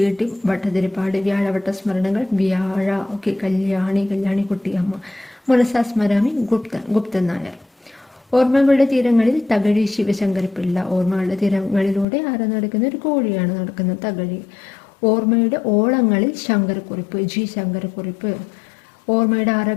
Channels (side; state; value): right; drops out; at 12.1 s